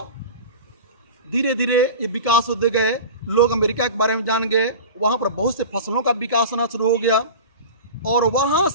धीरे धीरे ये विकास होते गए, लोग अमेरिका के बारे में जान गए, वहाँ पर बहुत से फसलों का विकास होना शुरू हो गया। और वहाँ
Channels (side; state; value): both; inverted; correlation -0.33